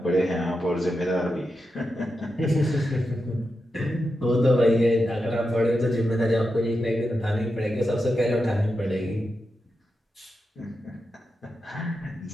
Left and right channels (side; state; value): both; normal; correlation 0.88